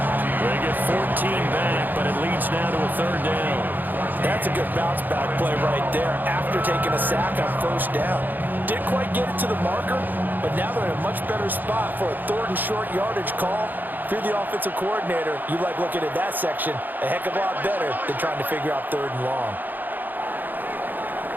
They get 14 back, but it leads now to a 3rd down. That's a good bounce back play right there after taking a sack on 1st down. Didn't quite get it to the marker, but now they're in a much better spot for a 3rd and short yardage call. If you're the offensive coordinator, you like looking at that section a heck of a lot better than trying to figure out 3rd and long.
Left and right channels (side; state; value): left; late; 0.087 ms